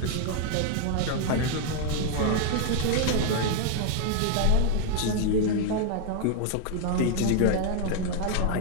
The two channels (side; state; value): both; different; correlation 0.00